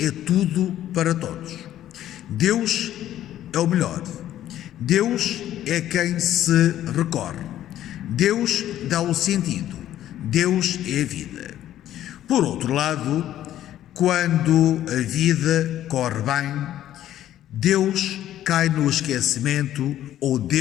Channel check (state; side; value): quieter; right; 12.4 dB